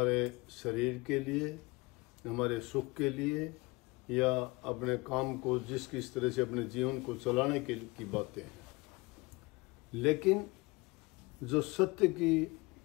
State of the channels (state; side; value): quieter; right; 24.6 dB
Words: शरीर के लिए, हमारे सुख के लिए या अपने काम को किस तरह से अपने जीवन को चलाने की बातें हैं। लेकिन जो सत्य की,